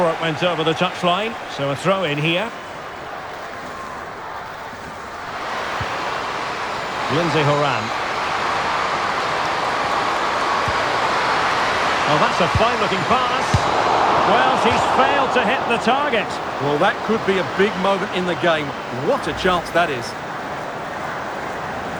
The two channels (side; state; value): both; identical; correlation 1.00